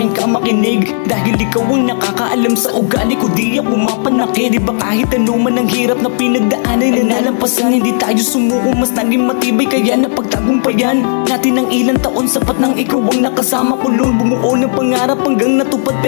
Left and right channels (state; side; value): silent; right; digital silence